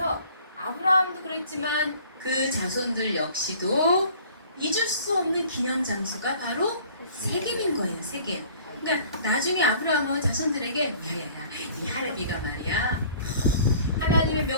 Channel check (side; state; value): both; inverted; correlation -0.51